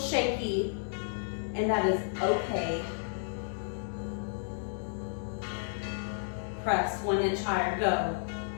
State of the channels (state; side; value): silent; right; digital silence